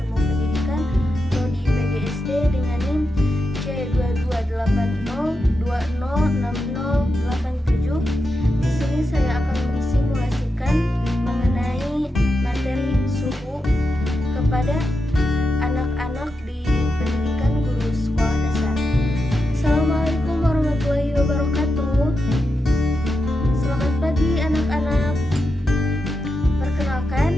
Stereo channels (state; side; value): normal; both; correlation 0.87